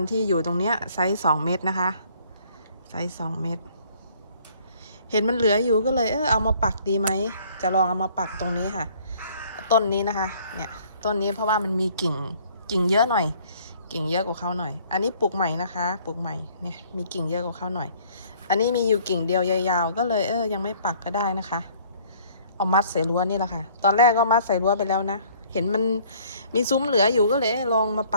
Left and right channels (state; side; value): inverted; both; correlation -0.58